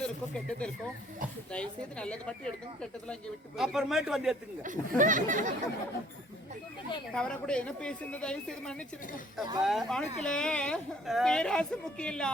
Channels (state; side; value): normal; both; correlation 0.59